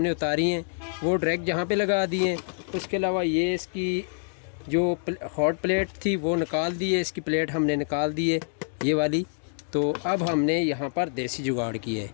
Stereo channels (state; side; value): silent; right; digital silence